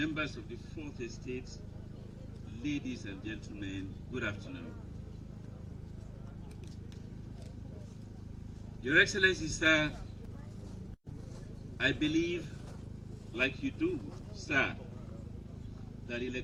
of the Fourth Estate, ladies and gentlemen, good afternoon. Your Excellency, sir, I believe, like you do, sir, that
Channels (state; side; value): identical; both; correlation 1.00